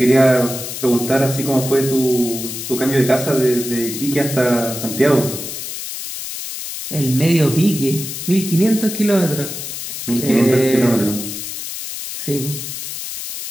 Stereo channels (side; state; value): left; noise; hiss, 7 dB below the sound